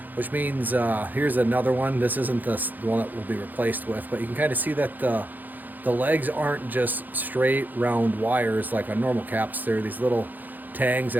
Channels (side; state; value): left; late; 0.085 ms